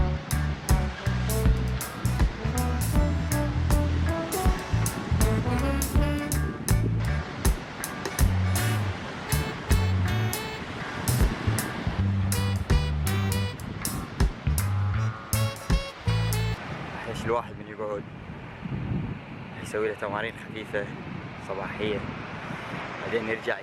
الواحد من يقعد يسوي له تمارين خفيفة صباحية، بعدين يرجع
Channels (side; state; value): both; identical; correlation 1.00